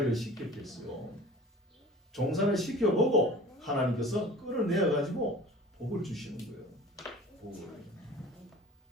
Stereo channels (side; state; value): both; normal; correlation 0.43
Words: 시켰겠어요? 종살이를 시켜보고 하나님께서 끌어내어 가지고 복을 주시는 거예요. 복을.